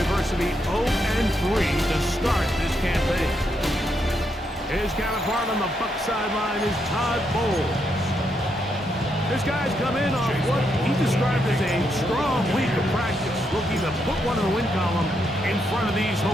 adversity, 0-3 to start this campaign. His counterpart on the Buck sideline is Todd Bowles. This guy's come in off what he described as a strong week of practice, looking to put one in the win column in front of these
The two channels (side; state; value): both; normal; correlation 0.79